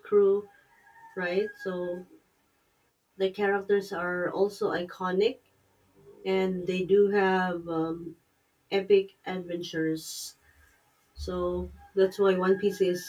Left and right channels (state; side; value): identical; both; correlation 1.00